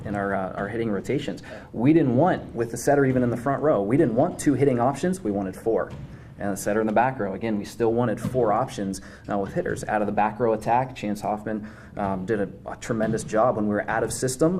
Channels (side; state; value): both; identical; correlation 1.00